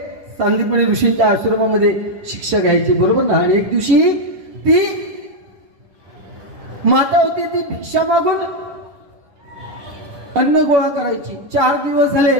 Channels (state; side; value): late; left; 10 ms